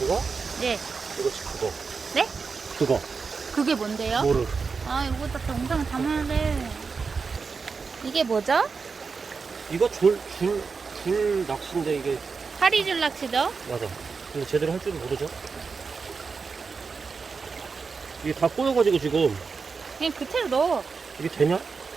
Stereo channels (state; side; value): quieter; left; 5.0 dB